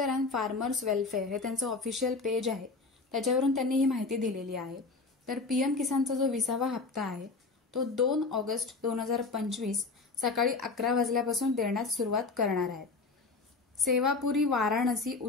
अँड फार्मर्स वेलफेअर हे त्यांचं ऑफिशियल पेज आहे, त्याच्यावरून त्यांनी ही माहिती दिलेली आहे। तर पीएम किसानचा जो 20वा हप्ता आहे तो 2 ऑगस्ट 2025 सकाळी 11 वाजल्यापासून देण्यास सुरुवात करणार आहे। सेवापुरी वाराणसी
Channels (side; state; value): right; quieter; 3.9 dB